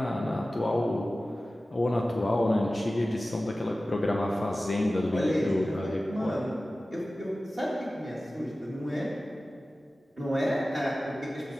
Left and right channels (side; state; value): both; normal; correlation 0.96